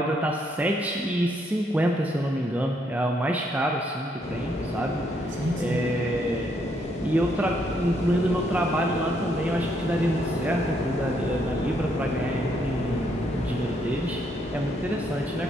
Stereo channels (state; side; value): normal; both; correlation 0.73